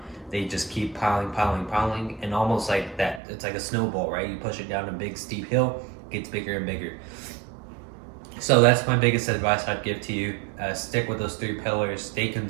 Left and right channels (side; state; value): left; drops out; at 3.2 s